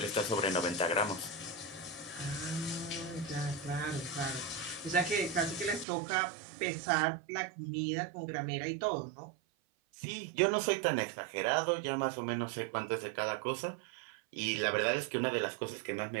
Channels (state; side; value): drops out; left; at 5.9 s